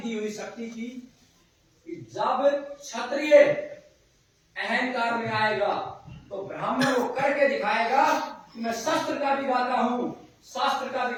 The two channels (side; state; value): both; identical; correlation 1.00